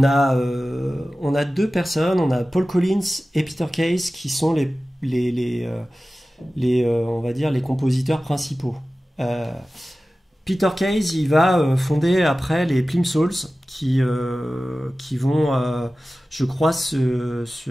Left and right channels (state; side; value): normal; both; correlation 0.96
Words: a deux personnes, on a Paul Collins et Peter Case qui sont on va dire les compositeurs principaux. Euh, Peter Case, il va fonder après les Plimsouls qui vont, je crois, se